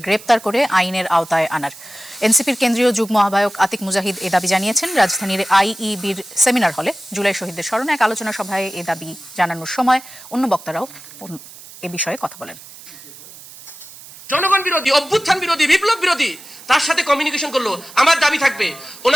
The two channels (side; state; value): right; noise; hiss, 18 dB below the sound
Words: গ্রেপ্তার করে আইনের আওতায় আনার। এনসিপির কেন্দ্রীয় যুগ্ম আহ্বায়ক আতিক মুজাহিদ এ দাবি জানিয়েছেন রাজধানীর আইইবির সেমিনার হলে জুলাই শহীদদের স্মরণে এক আলোচনা সভায় এ দাবি জানানোর সময় অন্য বক্তারাও এ বিষয়ে কথা বলেন। জনগণ বিরোধী, অভ্যুত্থান বিরোধী, বিপ্লব বিরোধী তার সাথে কমিউনিকেশন করলো। আমার দাবি থাকবে